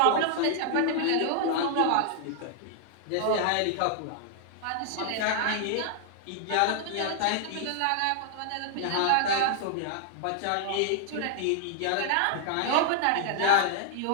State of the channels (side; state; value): both; different; correlation -0.01